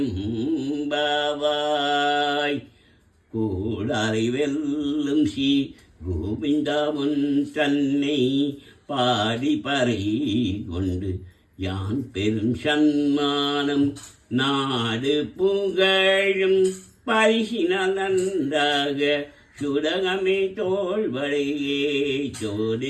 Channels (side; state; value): both; identical; correlation 1.00